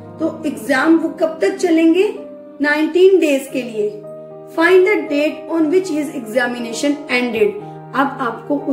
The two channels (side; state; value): both; identical; correlation 1.00